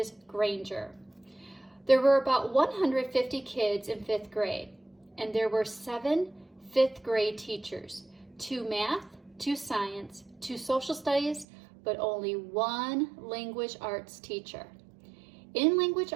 Granger. There were about 150 kids in fifth grade, and there were 7 fifth grade teachers, 2 math, 2 science, 2 social studies, but only 1 language arts teacher. In language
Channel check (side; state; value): left; drops out; at 11.5 s